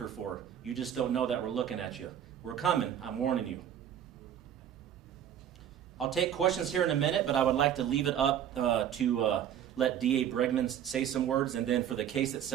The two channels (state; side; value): quieter; left; 9.8 dB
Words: for. You just don't know that we're looking at you. We're coming, I'm warning you. I'll take questions here in a minute, but I would like to leave it up to let DA Bregman say some words, and then for the case